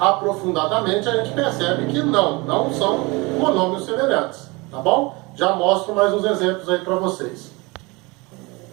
a gente percebe que não são monômios semelhantes, tá bom? Já mostro mais uns exemplos aí para vocês.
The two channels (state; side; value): quieter; left; 25.5 dB